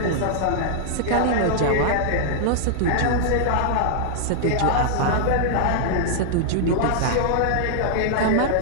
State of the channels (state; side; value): different; both; correlation -0.01